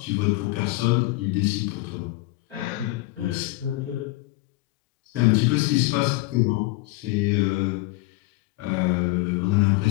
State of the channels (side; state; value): right; quieter; 20.3 dB